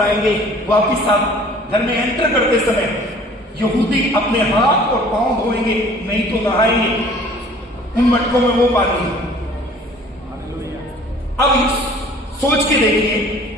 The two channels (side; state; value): both; normal; correlation 0.51